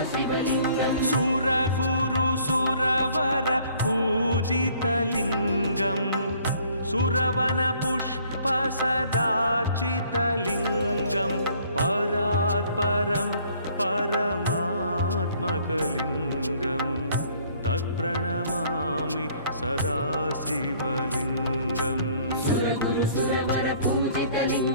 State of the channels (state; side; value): inverted; both; correlation -0.59